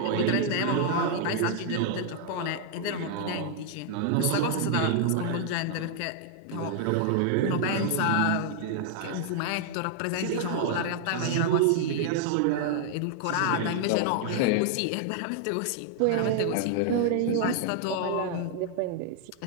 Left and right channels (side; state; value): both; different; correlation 0.00